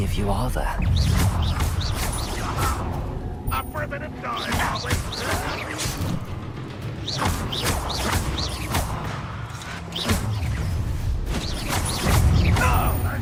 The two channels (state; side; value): identical; both; correlation 1.00